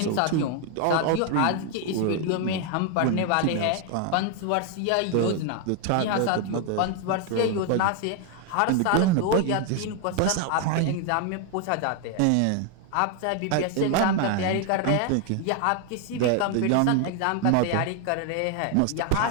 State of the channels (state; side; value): different; both; correlation 0.01